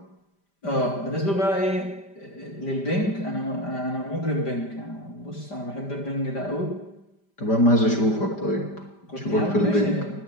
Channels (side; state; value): right; late; 5.1 ms